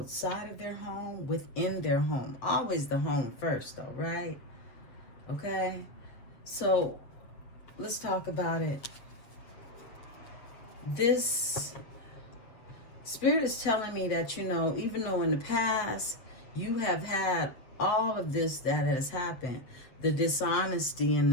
of their home, within their home. Always the home first, though, right? Okay? So, let's talk about it. This Spirit is telling me that, you know, even though in the past you have had all of this that has happened, the dishonesty and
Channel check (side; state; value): right; late; 7.6 ms